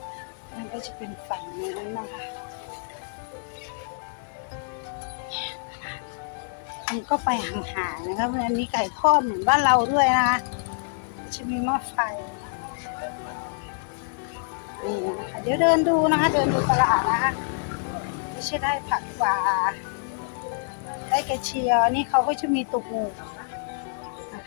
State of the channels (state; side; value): silent; right; digital silence